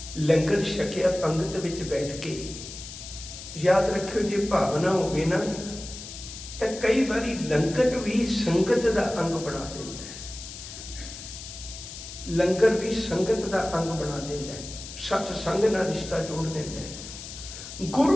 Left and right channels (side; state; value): left; noise; hiss, 12 dB below the sound